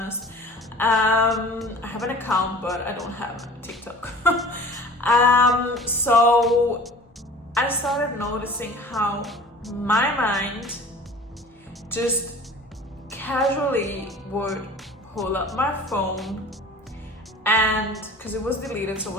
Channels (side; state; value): both; normal; correlation 0.44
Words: I have an account, but I don't have TikTok. So I started noticing how my mind just casually would pull up my phone, and because it was deleted, so I